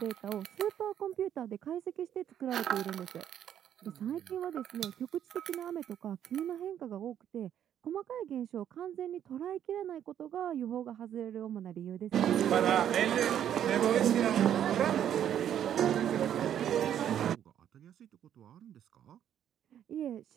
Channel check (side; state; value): left; quieter; 10.0 dB